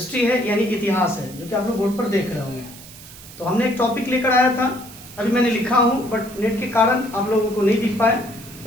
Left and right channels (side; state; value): right; noise; hiss, 18 dB below the sound